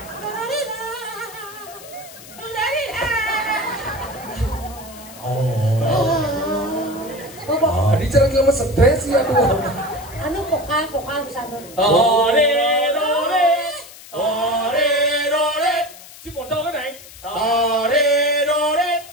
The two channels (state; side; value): noise; left; hiss, 18 dB below the sound